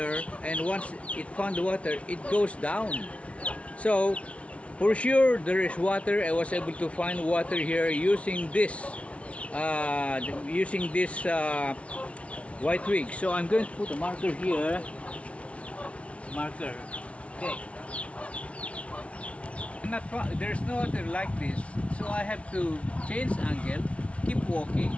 and once it found the water, it goes down. So for sure there is water. I was able to find water here using this white twig. So I'm going to put a marker here. Marker. Okay. There's no water like this, so I have to change angle, keep walking,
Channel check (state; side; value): late; right; 0.063 ms